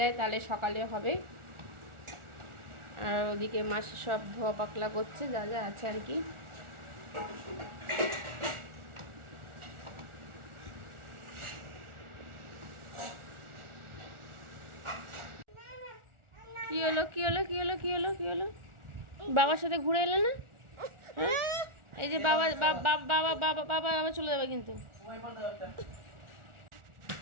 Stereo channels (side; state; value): left; late; 1.4 ms